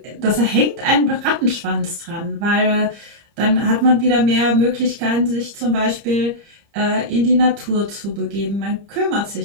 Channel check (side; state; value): left; late; 30 ms